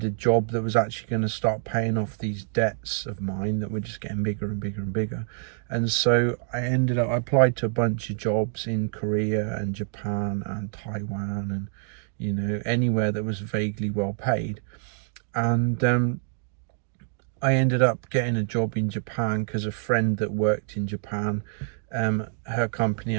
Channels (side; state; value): left; silent; digital silence